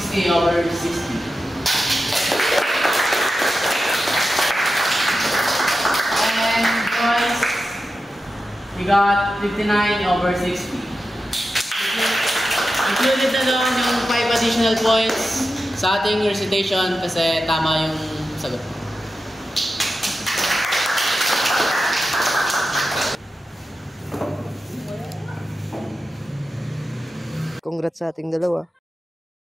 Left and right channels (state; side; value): normal; both; correlation 0.91